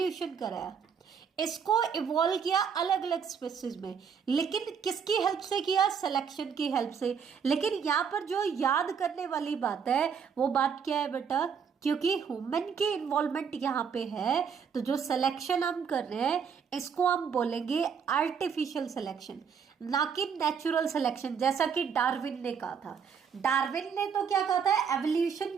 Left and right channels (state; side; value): quieter; left; 6.8 dB